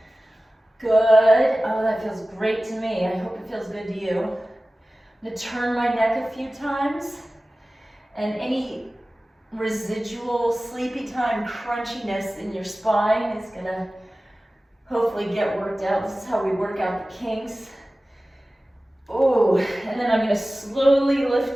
Good. Oh, that feels great to me. I hope it feels good to you. I'm gonna turn my neck a few times, and any residual sleepy time crunchiness in your spine is gonna hopefully get worked out. This is how we work out the kinks. Oh, and then I'm gonna slowly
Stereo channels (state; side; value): normal; both; correlation 0.97